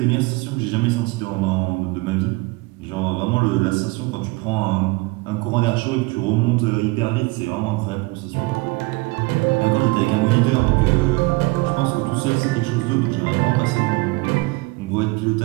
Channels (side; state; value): left; quieter; 24.4 dB